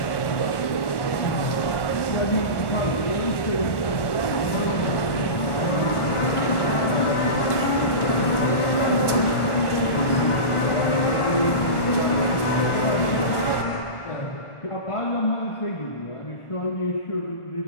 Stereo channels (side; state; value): right; late; 1.1 ms